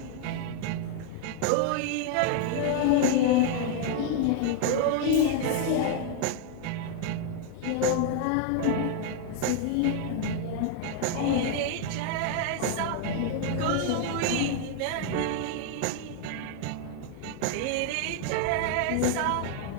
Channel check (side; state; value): both; different; correlation 0.00